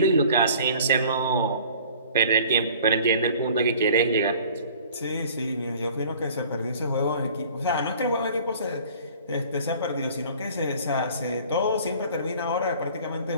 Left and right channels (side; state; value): both; inverted; correlation -0.49